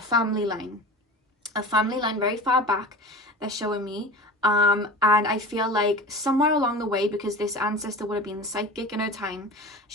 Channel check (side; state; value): both; normal; correlation 0.35